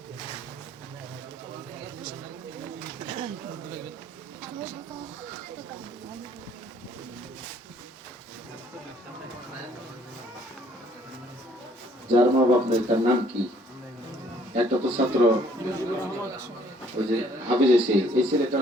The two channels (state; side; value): normal; both; correlation 0.61